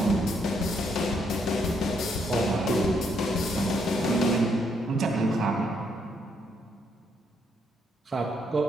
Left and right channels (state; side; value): normal; both; correlation 0.74